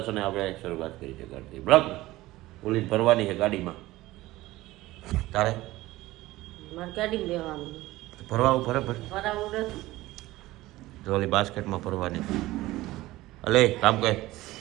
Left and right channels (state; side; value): quieter; left; 17.8 dB